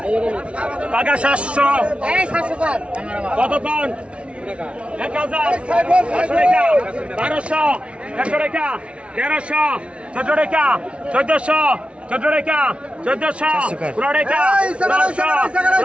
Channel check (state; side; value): late; left; 0.060 ms